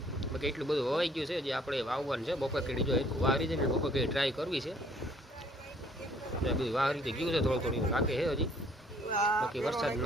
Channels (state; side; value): normal; both; correlation 0.60